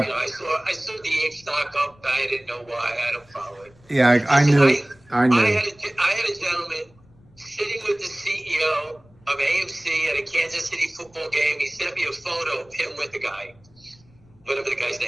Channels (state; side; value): noise; left; rumble, 29 dB below the sound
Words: saw the APE stock up. I didn't know why. I don't follow it. Yeah, I knew. I had a gentleman sitting with the CEO of AMC at a Kansas City football game. He sent me a photo of him with the guy, whatever the guy's